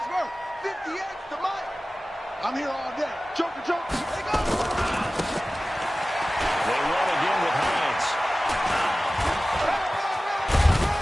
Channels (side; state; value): both; normal; correlation 0.96